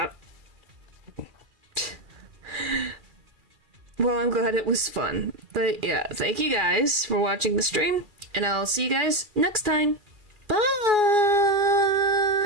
Well, I'm glad it was fun. But yeah, thank you guys for watching the stream, and I'll see you guys next time.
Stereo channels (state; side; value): late; left; 2.4 ms